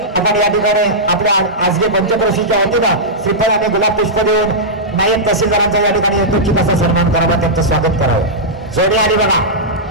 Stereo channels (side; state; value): both; normal; correlation -0.11